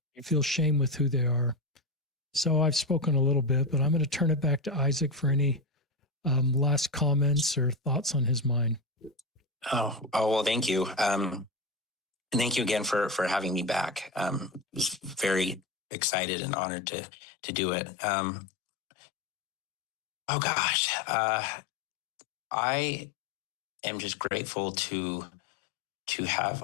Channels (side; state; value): right; drops out; at 15.6 s